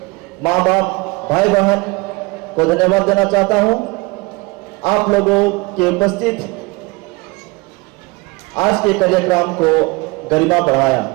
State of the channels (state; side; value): quieter; left; 25.3 dB